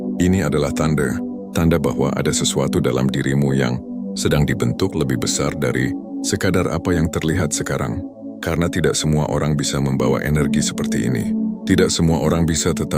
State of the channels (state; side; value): identical; both; correlation 1.00